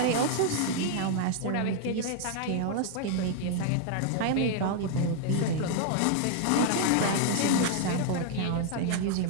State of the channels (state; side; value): different; both; correlation 0.00